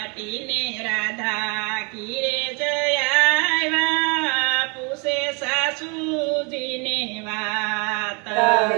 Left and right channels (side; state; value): left; quieter; 33.1 dB